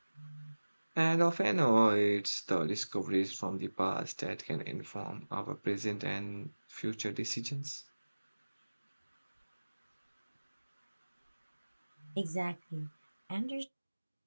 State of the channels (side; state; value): both; inverted; correlation -1.00